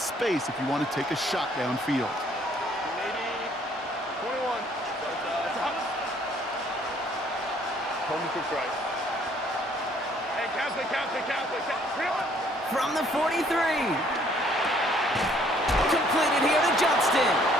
if you want to take a shot downfield. From the 43. Completed here to Johnston.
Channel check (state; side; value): normal; both; correlation 0.62